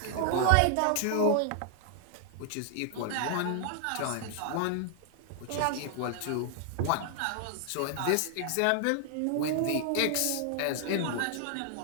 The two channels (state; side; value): different; both; correlation 0.00